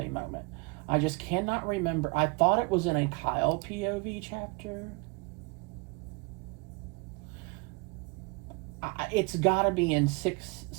moment. I just cannot remember. I thought it was in a Kyle POV chapter. It's got to be in 6,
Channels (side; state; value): left; quieter; 28.0 dB